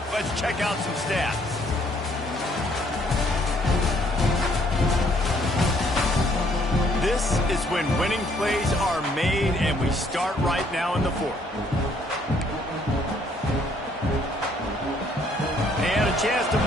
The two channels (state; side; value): normal; both; correlation 0.66